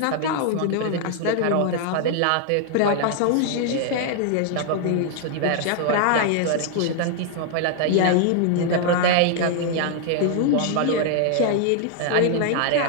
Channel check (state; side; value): different; both; correlation 0.00